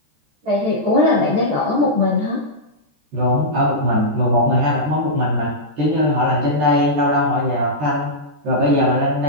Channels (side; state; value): left; late; 13 ms